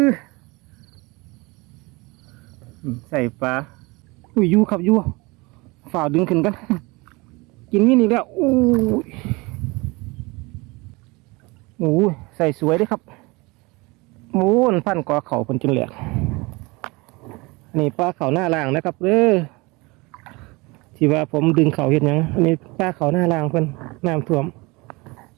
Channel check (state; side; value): quieter; left; 24.8 dB